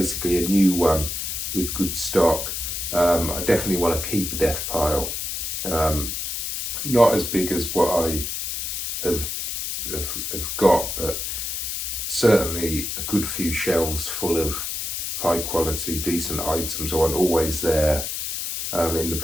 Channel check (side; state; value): left; noise; hiss, 3 dB below the sound